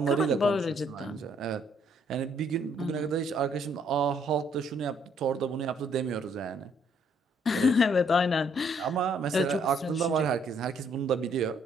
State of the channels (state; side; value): normal; both; correlation 0.67